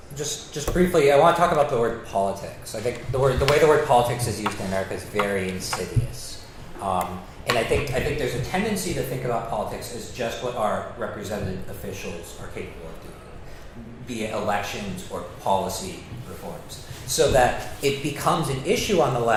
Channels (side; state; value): both; identical; correlation 1.00